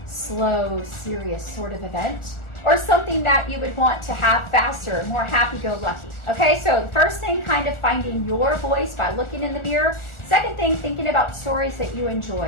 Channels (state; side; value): late; right; 1.4 ms